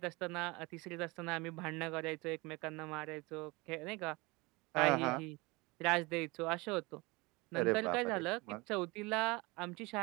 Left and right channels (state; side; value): quieter; left; 24.6 dB